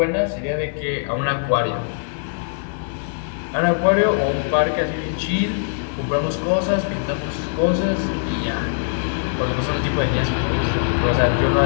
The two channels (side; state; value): right; silent; 61 dB below the other